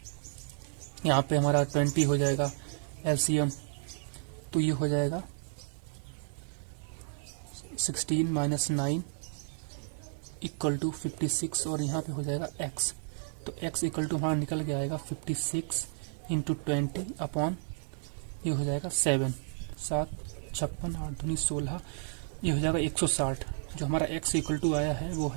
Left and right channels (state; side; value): silent; left; 56 dB below the other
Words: यहाँ पे हमारा 20 हो जाएगा LCM, तो ये हो जाएगा 16 माइनस 9 इक्वल टू 56, और यहाँ पे हो जाएगा x, तो x इक्वल टू हमारा निकल के आएगा 56 इंटू 20 अपॉन, ये हो जाएगा 7, 7 56 8 दूनी 16, ये हो जाएगा 160। जो हमारा x इक्वल टू आया है वो